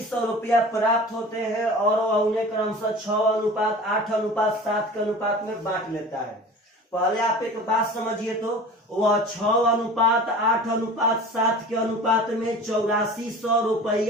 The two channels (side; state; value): both; normal; correlation 0.39